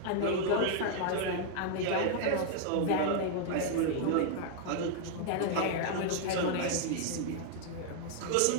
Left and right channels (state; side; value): different; both; correlation 0.00